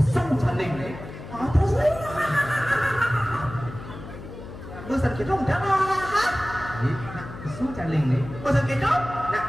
saling nih. Terus nih. Bosan gitu udah lah. Pesan saling nih. Bosan gitu? Nah,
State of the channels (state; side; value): noise; left; hum, 12 dB below the sound